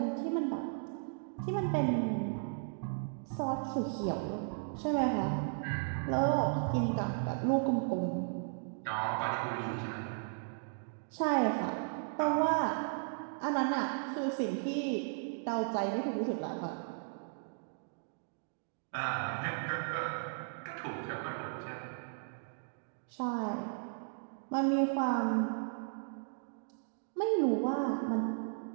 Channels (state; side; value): silent; left; digital silence